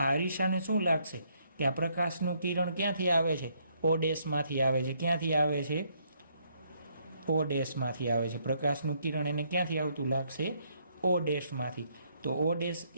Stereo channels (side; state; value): both; inverted; correlation -0.71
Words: અરીસાને શું લાગશે કે આ પ્રકાશનું કિરણ ક્યાંથી આવે છે, O ડેશમાંથી આવે છે. ક્યાંથી આવે છે, O ડેશમાંથી આવે છે. પ્રકાશનું કિરણ એને ક્યાંથી આવતું લાગશે, O ડેશમાંથી. તો O